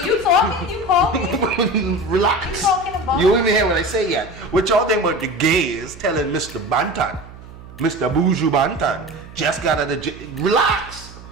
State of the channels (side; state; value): right; noise; hum, 18 dB below the sound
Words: you talking? You calling? Relax. What you talking about? You don't even hear what I say yet. What y'all think about the gays telling Mr. Banton, Mr. Buju Banton, just got out of jail. Relax.